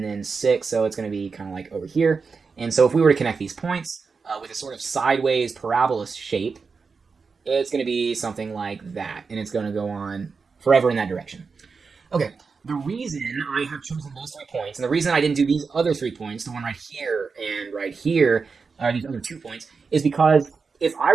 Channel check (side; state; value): left; quieter; 5.0 dB